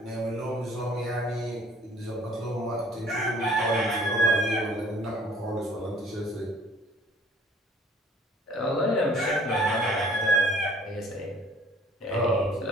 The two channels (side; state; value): both; normal; correlation 0.54